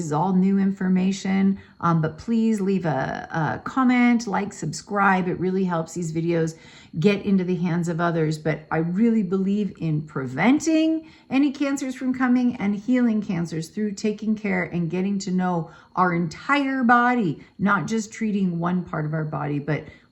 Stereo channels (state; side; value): identical; both; correlation 1.00